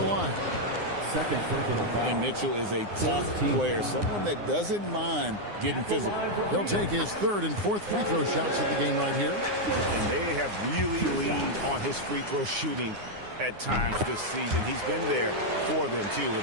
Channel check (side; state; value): left; late; 9.7 ms